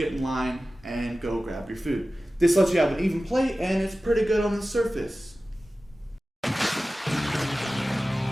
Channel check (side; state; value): both; normal; correlation 0.96